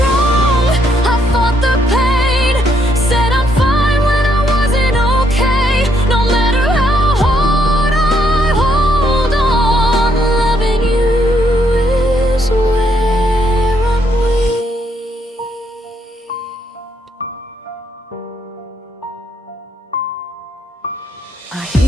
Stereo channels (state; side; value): normal; both; correlation 0.73